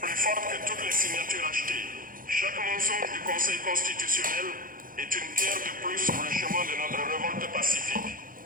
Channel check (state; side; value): late; left; 0.40 ms